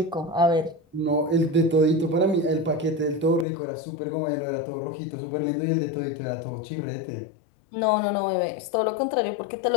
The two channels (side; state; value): right; drops out; at 3.5 s